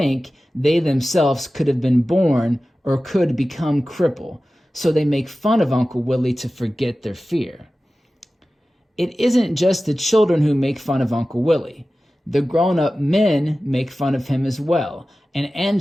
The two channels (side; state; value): both; normal; correlation 0.95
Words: they themselves could have been born or could become crippled, so they make fun of Uncle Willie to forget their fear. It isn't just the children who make fun of Uncle Willie. The grown-up men make fun of him as well, and